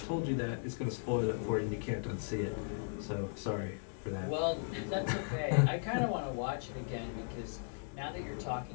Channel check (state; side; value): silent; right; 53 dB below the other